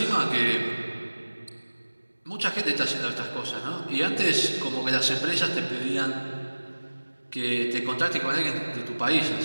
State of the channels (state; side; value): inverted; both; correlation -1.00